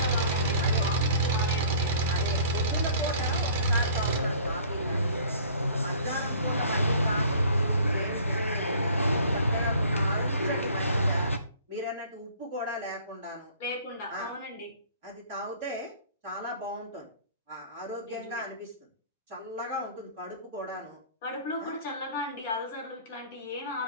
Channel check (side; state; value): both; inverted; correlation -0.50